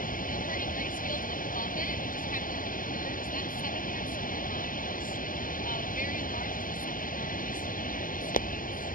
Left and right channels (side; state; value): right; late; 0.40 ms